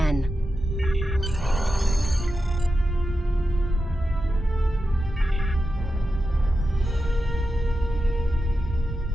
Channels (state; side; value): normal; both; correlation 0.90